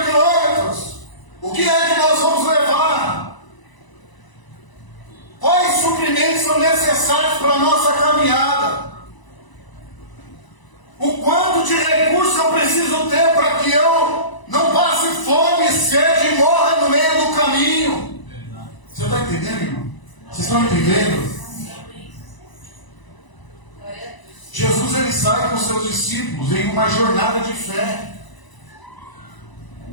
quilômetros. O que é que nós vamos levar? Quais suprimentos são necessários para a nossa caminhada? O quanto de recursos eu preciso ter para que eu não passe fome, sede e morra no meio do caminho? Você está entendendo, irmão? Vocês estão entendendo? Jesus ele sai com seus discípulos em uma jornada de fé,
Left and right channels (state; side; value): late; right; 1.0 ms